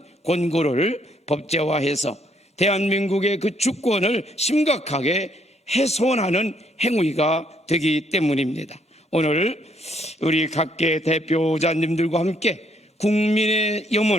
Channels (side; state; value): both; normal; correlation 0.69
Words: 권고를 법제화해서 대한민국의 그 주권을 심각하게 훼손하는 행위가 되기 때문입니다. 오늘 우리 각계 대표자님들과 함께 국민의